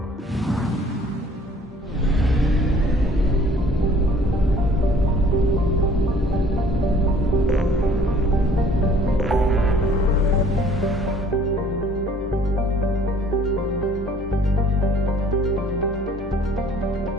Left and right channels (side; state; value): both; normal; correlation 0.56